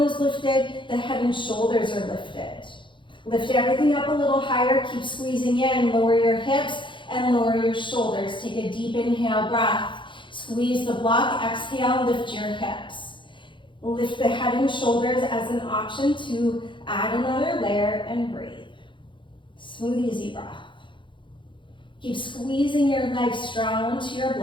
is lifted, the head and shoulders are lifted. Lift everything up a little higher, keep squeezing in, lower your hips and lower your shoulders. Take a deep inhale breath. Squeeze the block, exhale, lift your hips. Lift the head and shoulders as an option to add another layer and breathe. Smooth, easy breath. Keep squeezing your legs strong onto your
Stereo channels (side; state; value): right; late; 0.23 ms